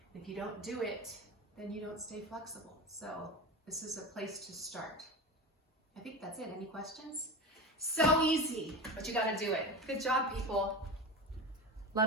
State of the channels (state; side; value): normal; both; correlation 0.26